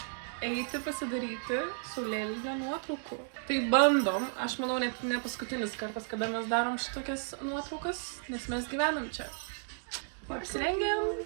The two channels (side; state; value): left; silent; digital silence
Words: Eiti pasidaryti saulėlydžio nuotraukų. Tai bandom, aš manau, ne paskutinis kartas, kada mes darom šitokias nuotraukas, nes mes gyvenam čia. Apsirengiam.